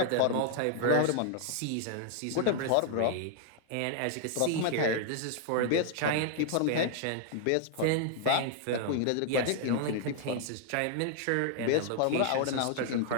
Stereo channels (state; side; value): different; both; correlation -0.01